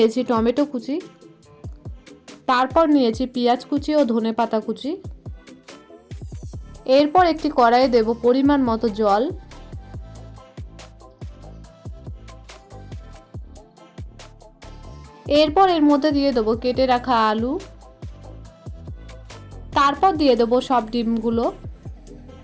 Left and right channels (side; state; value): both; identical; correlation 1.00